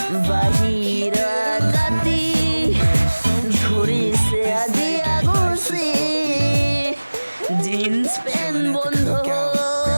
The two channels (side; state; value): both; inverted; correlation -1.00